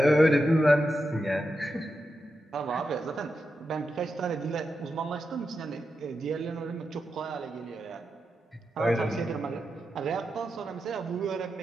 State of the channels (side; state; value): both; normal; correlation 0.88